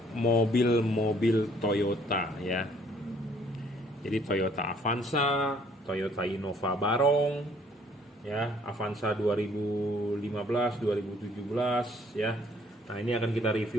mobil-mobil Toyota ya. Jadi Toyota Avanza, Toyota Innova Barong ya, Avanza 2015, 2017 ya. Nah, ini akan kita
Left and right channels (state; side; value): normal; both; correlation 0.61